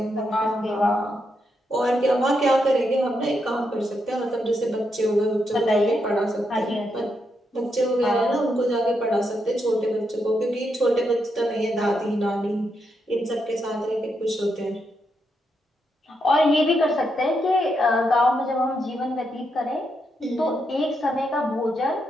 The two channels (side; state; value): both; normal; correlation 0.81